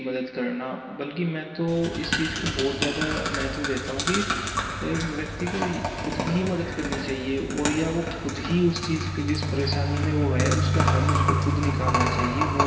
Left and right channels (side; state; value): both; identical; correlation 1.00